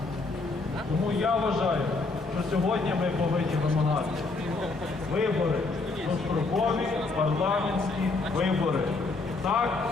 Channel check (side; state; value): right; quieter; 3.6 dB